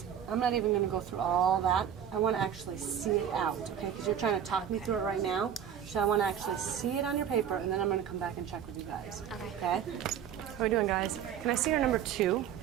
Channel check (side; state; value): left; quieter; 9.0 dB